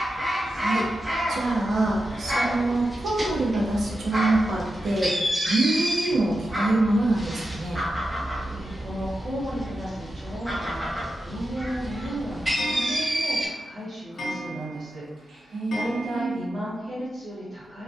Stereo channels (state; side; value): normal; both; correlation 0.90